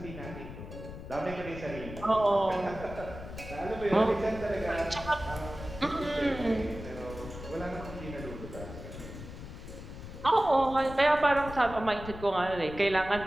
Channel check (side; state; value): left; noise; rumble, 11 dB below the sound